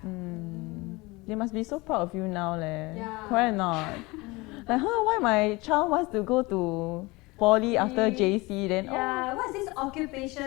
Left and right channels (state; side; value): quieter; right; 23.4 dB